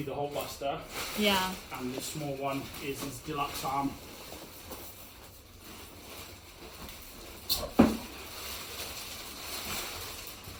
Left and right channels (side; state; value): both; identical; correlation 1.00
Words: the HulkBuster, Yeah. and the small one is his deluxe arm.